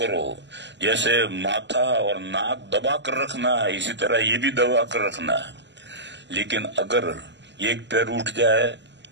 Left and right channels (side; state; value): left; late; 0.52 ms